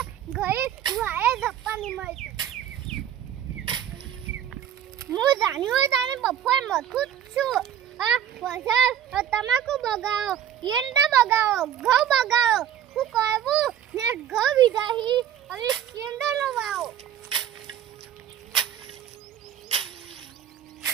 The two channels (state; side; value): quieter; left; 10.2 dB